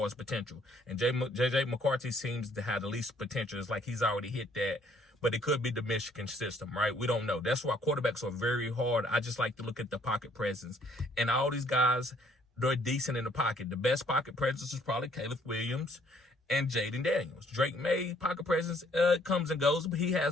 his potential. And J.J. McCarthy seems to have the least potential. It's like he's already hit that. But it could be the Michigan system, right? We don't know. That's why quarterbacks are very hard. I just like to look at the pocket presence. And all these guys, they're decent in the pocket. The best pocket presence is probably Caleb Williams and Jaylen Daniels. Drake May, pocket presence comes and goes, but he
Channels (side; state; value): both; normal; correlation 0.63